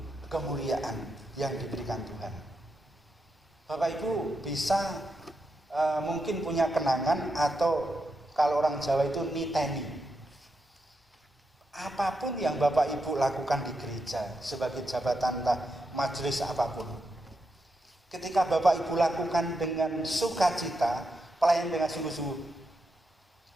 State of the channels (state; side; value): normal; both; correlation 0.85